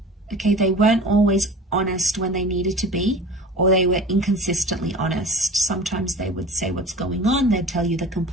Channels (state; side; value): normal; both; correlation 0.38